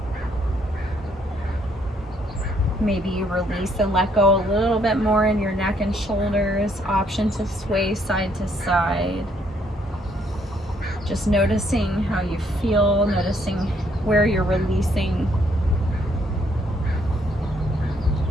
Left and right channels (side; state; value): both; normal; correlation 0.70